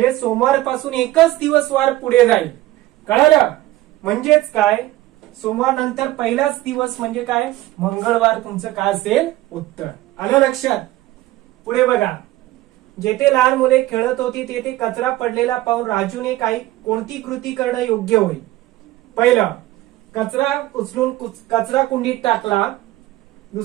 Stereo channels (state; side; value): quieter; left; 16.4 dB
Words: सोमवारपासून एकच दिवस वार पुढे जाईल, कळलं? म्हणजेच काय, सोमवार नंतर पहिलाच दिवस म्हणजे काय, मंगळवार तुमचं काय असेल, उत्तर. आलं लक्षात? पुढे बघा, जेथे लहान मुले खेळत होती तेथे कचरा पडलेला पाहून राजूने कोणती कृती करणं योग्य होईल? पहिलं, कचरा उचलून कचरा कुंडीत टाकला.